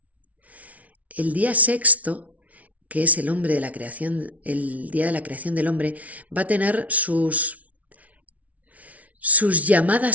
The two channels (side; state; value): left; late; 0.069 ms